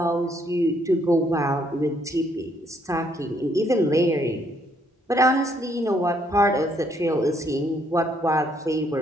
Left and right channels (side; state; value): both; normal; correlation 0.70